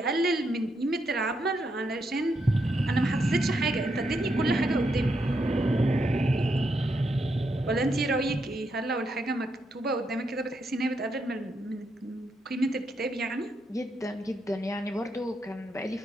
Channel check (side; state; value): both; normal; correlation 0.81